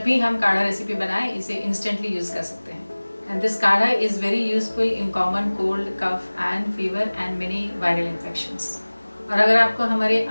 भी हम काढ़ा रेसिपी बनाएं इसे इंस्टेंटली यूज़ कर सकते हैं। And this kadha is very useful in common cold, cough and fever and many viral infections. और अगर आपको हमारे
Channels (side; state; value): both; inverted; correlation -1.00